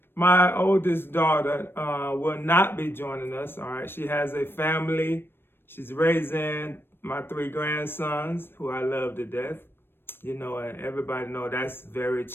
my oldest daughter will not be joining us. All right, she has a family. She's raising my 3 grandsons, who I love to death. You know, and everybody know that's very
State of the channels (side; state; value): right; late; 0.10 ms